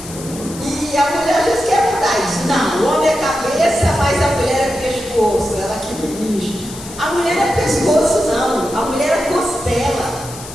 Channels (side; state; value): left; noise; hiss, 14 dB below the sound